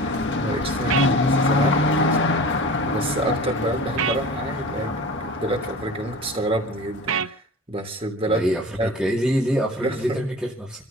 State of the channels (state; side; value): normal; both; correlation 0.38